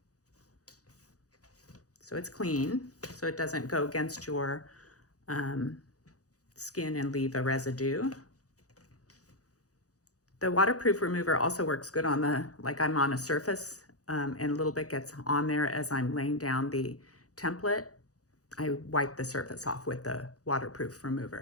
so it's clean, so it doesn't go against your skin and leave a residue. The waterproof remover also works good on like I'm on a surface and a little bit gets on there as I'm laying down the template. I wipe the surface off with the waterproof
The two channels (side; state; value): right; late; 0.66 ms